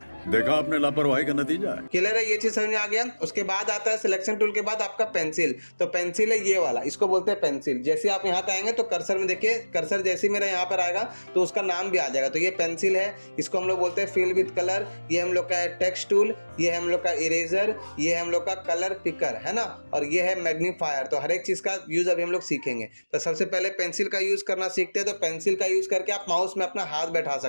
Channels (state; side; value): inverted; both; correlation -1.00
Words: देखा आपने लापरवाही का नतीजा है। क्लियर है, ये चीज समझ में आ गया। उसके बाद आता है सिलेक्शन टूल के बाद आपका पेंसिल। तो पेंसिल है ये वाला, इसको बोलते हैं पेंसिल। जैसे आप यहाँ पे आएंगे तो कर्सर में देखिए, कर्सर जैसे मेरा यहाँ पर आएगा तो उसका नाम भी आ जाएगा। तो ये पेंसिल है, इसको हम लोग बोलते हैं फिल विद कलर। ये हम लोग का है टेक्स्ट टूल, ये है हम लोग का इरेजर, ये है हम लोग का कलर पिकर, है ना, और ये है मैग्नीफायर। तो हर एक चीज का यूज अभी हम लोग सीखेंगे। तो सबसे पहले पेंसिल का यूज करना सीखते हैं। तो पेंसिल का यूज करके आप माउस में अपना हाथ बैठा